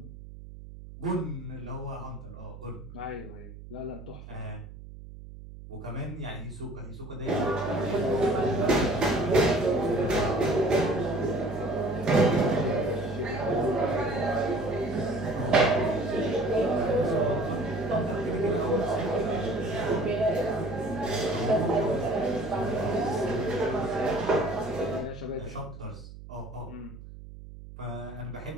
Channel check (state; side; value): noise; right; hum, 15 dB below the sound